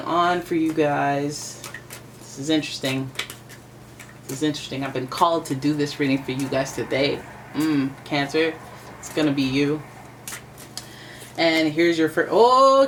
for you guys. This is interesting. This is interesting. I've been called to do this reading for you guys today. Cancer, it's gonna be you. And here's your first. Oh,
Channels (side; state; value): both; identical; correlation 1.00